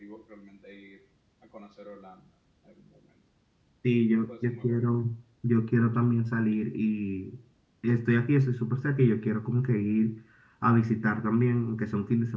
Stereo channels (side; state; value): both; identical; correlation 1.00